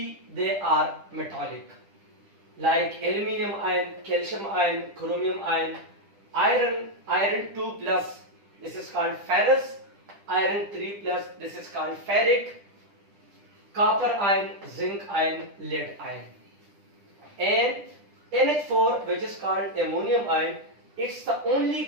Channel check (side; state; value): left; late; 10 ms